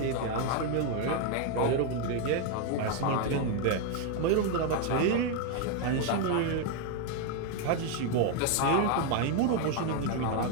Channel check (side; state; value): both; different; correlation 0.01